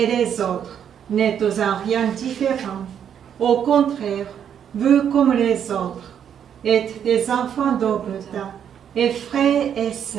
les autres n'êtes en rien différents. Au contraire, vous comme les autres êtes des enfants d'Obota et frères et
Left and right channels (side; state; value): left; quieter; 8.7 dB